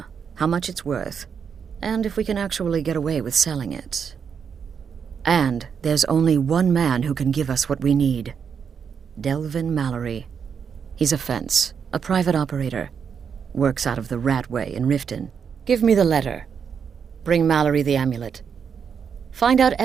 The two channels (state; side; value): quieter; left; 6.9 dB